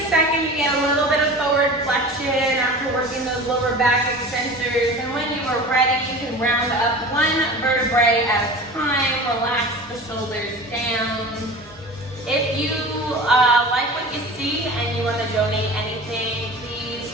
second to get a little bit of forward flexion after working those lower back extensors. And when you are ready, you can round up one vertebrae at a time. Relax the shoulders down. If you like what you see and you want to donate anything, please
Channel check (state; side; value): normal; both; correlation 0.36